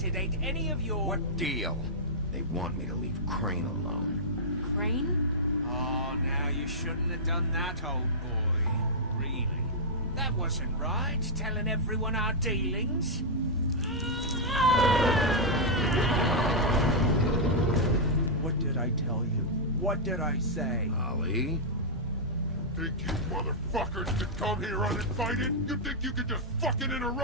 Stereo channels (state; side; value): normal; both; correlation -0.09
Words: it ain't any of your... What deal? They want me to leave Crane alone. Crane? Oh, now you shouldn't have done that, old boy. Really? That wasn't right, telling everyone our dealings. What did I tell you? What did I say? Holly? Think you motherfuckers could come here uninvited? You think you could just fucking